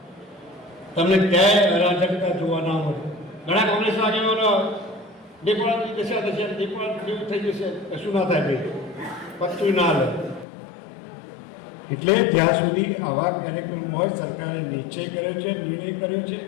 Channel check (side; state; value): right; drops out; at 10.5 s